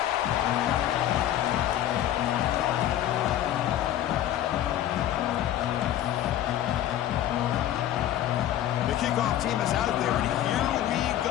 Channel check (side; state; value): right; quieter; 12.1 dB